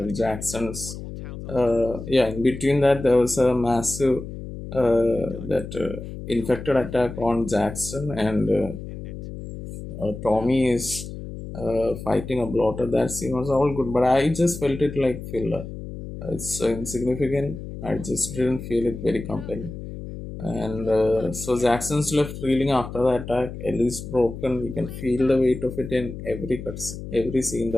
Jackson's, yeah. In between that, there was a massive that infected attack on Jackson, and Tommy is fighting a bloater. That scene was all good, but I just felt it like filler. It's so insignificant. I just didn't feel it very compelling. And so Jackson's left reeling after the attack. Ellie's broken. You can feel the weight of it in every scene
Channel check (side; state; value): left; noise; hum, 10 dB below the sound